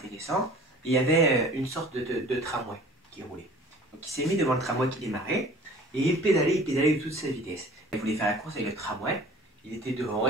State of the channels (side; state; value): both; normal; correlation 0.47